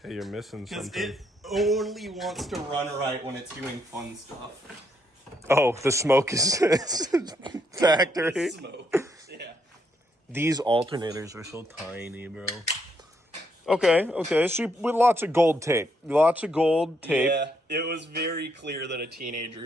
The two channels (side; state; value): both; normal; correlation 0.75